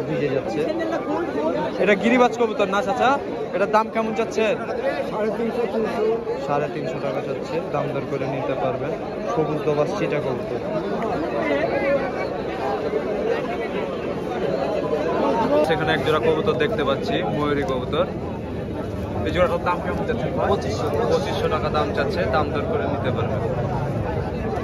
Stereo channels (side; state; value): both; identical; correlation 1.00